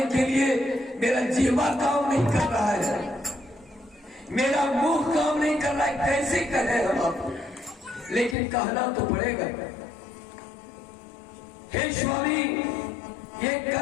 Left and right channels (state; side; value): drops out; right; at 8.3 s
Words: के लिए मेरा जीवा काम नहीं कर रहा है, मेरा मुंह काम नहीं कर रहा है, कैसे कहें हम आपको, लेकिन कहना तो पड़ेगा। हे स्वामी, ये